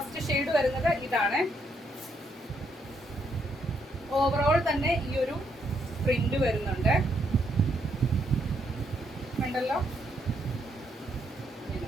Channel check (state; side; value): normal; both; correlation 0.75